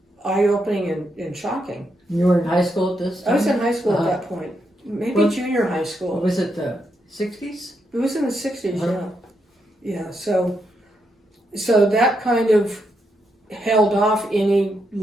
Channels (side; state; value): both; normal; correlation 0.81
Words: eye-opening and shocking. You were in high school at this time? I was in high school at that point, maybe junior high school. Was it the 60s? It was in the 60s, yeah. So that kind of held off any